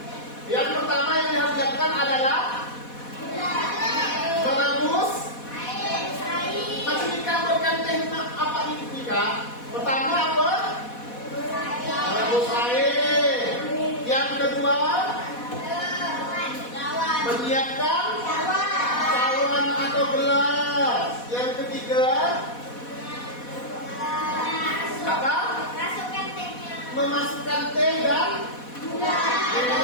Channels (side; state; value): right; late; 4.1 ms